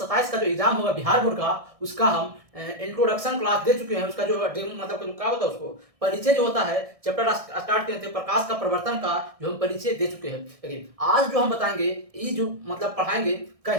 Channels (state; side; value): late; left; 1.6 ms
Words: का जो एग्जाम होगा बिहार बोर्ड का, उसका हम इंट्रोडक्शन क्लास दे चुके हैं। उसका जो मतलब जो क्या होता है, उसको परिचय जो होता है चैप्टर स्टार्ट किए थे प्रकाश का प्रवर्तन का, जो हम परिचय दे चुके हैं। लेकिन आज जो हम बताएंगे, ये जो मतलब पढ़ाएंगे,